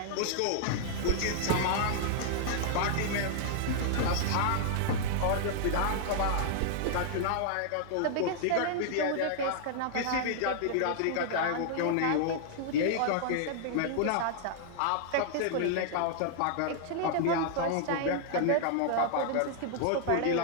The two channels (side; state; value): both; different; correlation -0.01